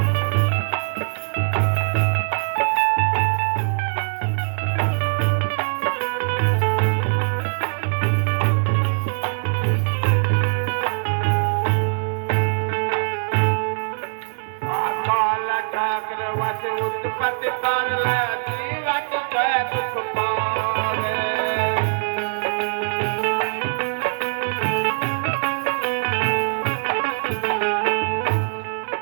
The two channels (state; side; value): silent; left; digital silence